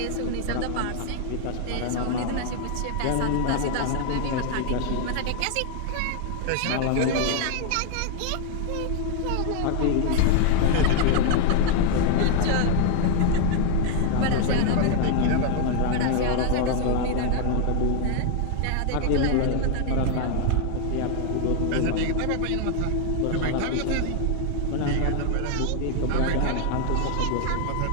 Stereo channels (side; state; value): both; different; correlation 0.00